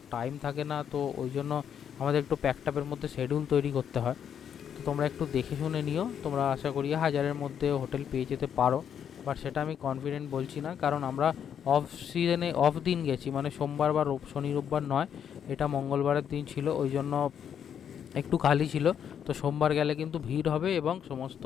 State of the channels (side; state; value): right; quieter; 8.5 dB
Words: টাইম থাকে না, তো ওই জন্য আমাদের একটু প্যাকটাপের মধ্যে শিডিউল তৈরি করতে হয়। তো তোমরা একটু দেখে শুনে নিও, তোমরা আশা করি 1000-এর মধ্যে হোটেল পেয়ে যেতে পারো। বাট সেটা আমি কনফিডেন্ট বলছি না, কারণ আমরা অফ সিজনে অফ দিন গেছি, মানে সোমবার বা শনি রোববার নয়, এটা মঙ্গলবারের দিন ছিল, ওই জন্য একটু খালি ছিল। তো সোমবার গেলে কিন্তু ভিড় হবে এবং সমস্ত